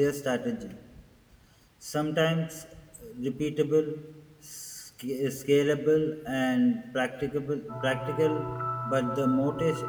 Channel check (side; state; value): both; identical; correlation 1.00